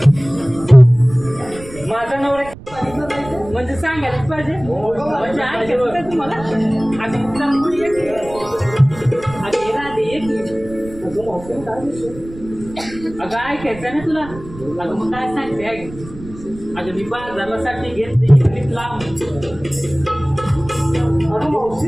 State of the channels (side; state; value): right; noise; rumble, 16 dB below the sound